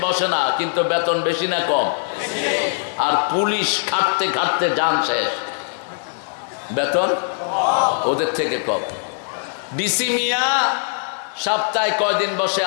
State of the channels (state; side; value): silent; right; digital silence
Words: বসে না, কিন্তু বেতন বেশি না কম? আর পুলিশ খাটতে খাটতে জান শেষ, বেতন ওদের থেকে কম। ডিসি মিয়া সপ্তাহে কয়দিন বসে